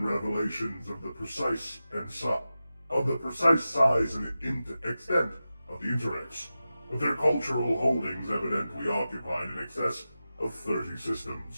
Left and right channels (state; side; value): inverted; both; correlation -0.93